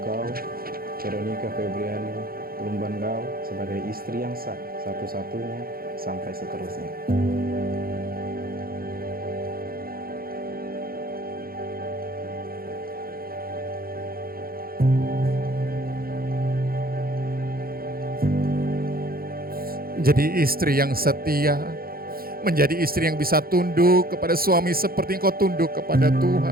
Veronica Febriani Lumbangau, sebagai istri yang sah, satu-satunya, sampai seterusnya. Menjadi istri yang setia, menjadi istri yang bisa tunduk kepada suami seperti engkau tunduk kepada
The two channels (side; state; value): left; late; 0.43 ms